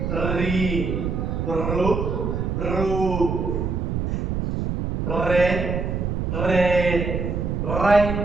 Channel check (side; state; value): right; noise; rumble, 1 dB below the sound